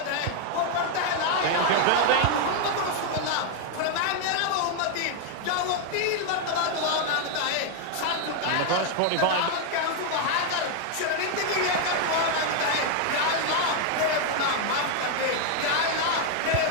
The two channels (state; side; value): different; both; correlation 0.00